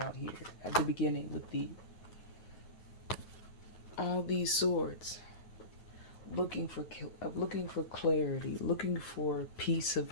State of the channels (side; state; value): right; late; 9.3 ms